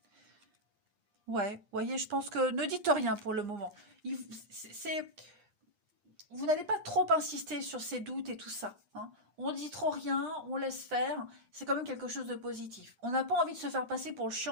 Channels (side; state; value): left; late; 8.5 ms